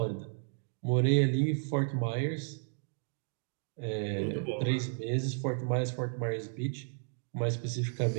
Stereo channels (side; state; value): left; silent; 56 dB below the other